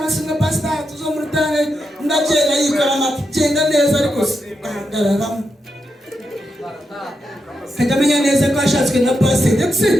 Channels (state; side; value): normal; both; correlation 0.85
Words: pasita tuzomurutane ndagenda yikora amagenda neza ariko ahagararamo kagamenya neza ko ashatswe na pasita ndetse